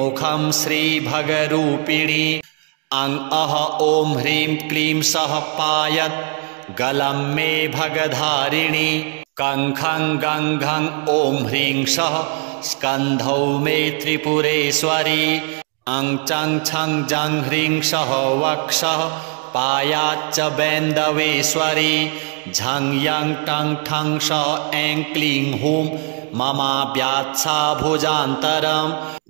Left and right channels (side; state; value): left; quieter; 39.0 dB